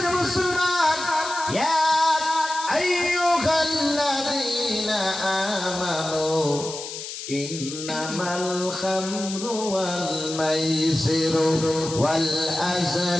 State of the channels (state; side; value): noise; left; hiss, 9 dB below the sound